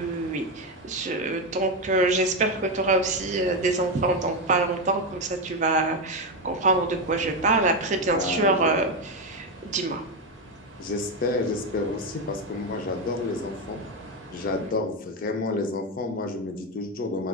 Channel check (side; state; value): both; normal; correlation 0.10